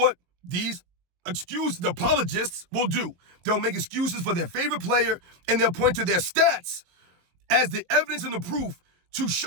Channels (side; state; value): left; late; 23 ms